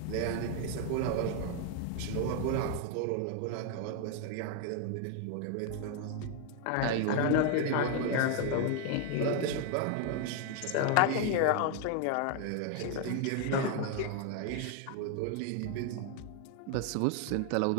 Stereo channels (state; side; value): different; both; correlation 0.00